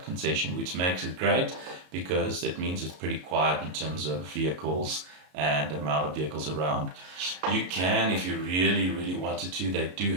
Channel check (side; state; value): left; late; 33 ms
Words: concession, which makes it great because it means it's pretty quiet in terms of vehicles and the amount of vehicles around. You can, if you really, really wanted to, they do